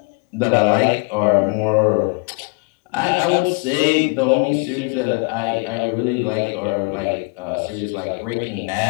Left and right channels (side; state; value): right; quieter; 34.1 dB